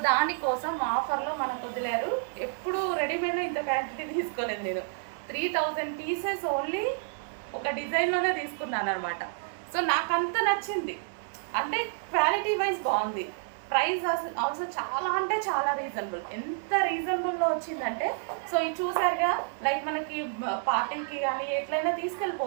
దానికోసం ఆఫర్లో మనకు వదిలేరు. ఎప్పుడు రెడీమేడ్లో ఇంత క్వాంటిటీ తీసుకోలేదు నేను. 3000 పీసెస్ ఓన్లీ ఒక డిజైన్లోనే తీసుకున్నాను అనమాట. సో నాకు అంత నచ్చింది. అంటే క్వాలిటీ వైజ్ బాగుంది. ప్రైస్ ఆల్సో చాలా అంటే చాలా రీజనబుల్. ఎంత రీజనబుల్లో వచ్చిందంటే, సో ఇది చూసారుగా, లైక్ మనకి పార్టీకి కానీ ఎట్లయినా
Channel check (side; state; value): left; silent; 58 dB below the other